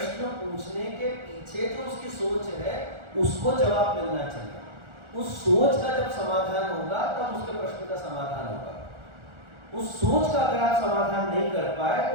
पूछने के पीछे जो उसकी सोच है उसको जवाब मिलना चाहिए। उस सोच का जब समाधान होगा तब उसके प्रश्न का समाधान होगा। उस सोच का अगर आप समाधान नहीं कर पाए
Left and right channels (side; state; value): left; late; 1.4 ms